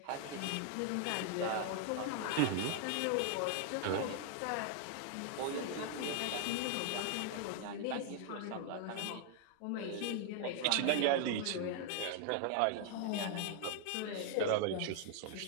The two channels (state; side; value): different; both; correlation 0.00